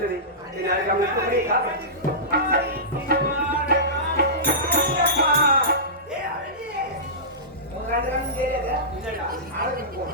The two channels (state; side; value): normal; both; correlation -0.19